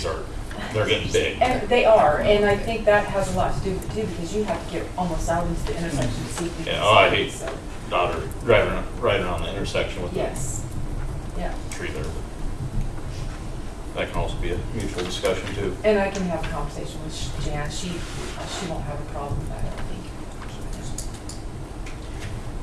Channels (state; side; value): identical; both; correlation 1.00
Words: they're getting big. And they are, and I think that has a lot to do with it too, because you have to get almost out into the intersection to see if you can Yeah, oh, I see it, hate so, Daughter driving right around the intersection with yes, yeah. the tree there. That can also be a mutual discussion too. And I can have a conversation with Jan, she won't have a problem with that, I don't think.